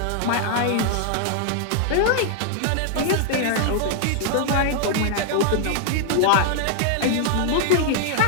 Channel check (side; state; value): both; different; correlation 0.00